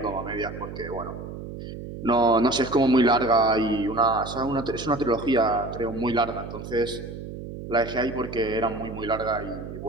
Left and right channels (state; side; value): noise; right; hum, 10 dB below the sound